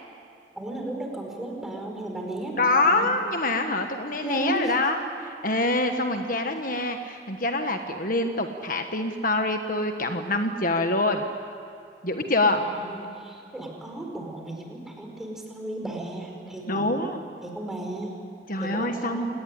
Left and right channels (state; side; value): normal; both; correlation -0.02